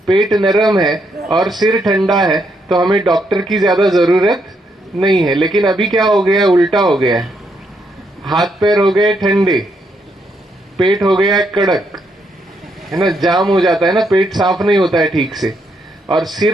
पेट नरम है और सिर ठंडा है तो हमें डॉक्टर की ज्यादा जरूरत नहीं है। लेकिन अभी क्या हो गया, उल्टा हो गया है। हाथ पैर हो गए ठंडे, पेट हो गया कड़क, है ना, जाम हो जाता है ना, पेट साफ नहीं होता है ठीक से, और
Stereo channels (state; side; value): normal; both; correlation 0.77